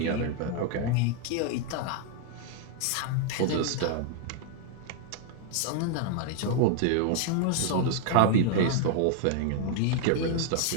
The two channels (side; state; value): both; different; correlation 0.00